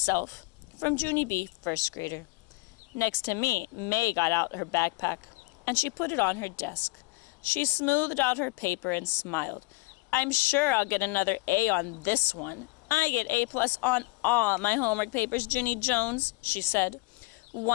From Junie B., first grader. Next to me, May got out her backpack, and she put it on her desk. She smoothed out her paper and smiled. I'm sure I'll get another A on this one. I get A+ on all my homework papers, Junie Jones, she said.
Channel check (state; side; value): quieter; right; 24.6 dB